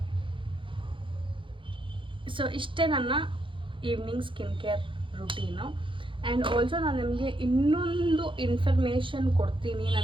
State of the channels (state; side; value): late; left; 0.25 ms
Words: ಸೊ ಇಷ್ಟೇ ನನ್ನ evening skin care routine. And also ನಾನು ನಿಮಗೆ ಇನ್ನೊಂದು ಇನ್ಫಾರ್ಮೇಷನ್ ಕೊಡ್ತೀನಿ